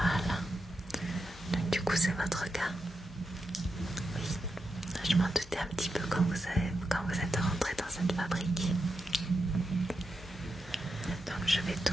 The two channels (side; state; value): both; normal; correlation 0.87